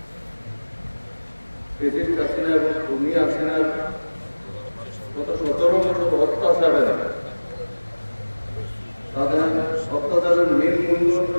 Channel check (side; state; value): both; inverted; correlation -1.00